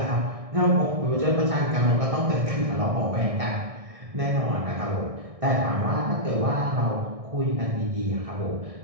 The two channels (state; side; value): late; left; 1.6 ms